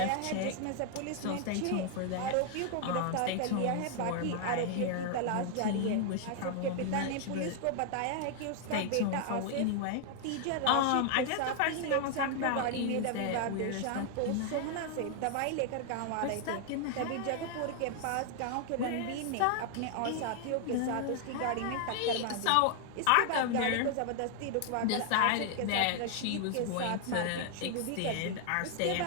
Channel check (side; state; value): both; different; correlation 0.00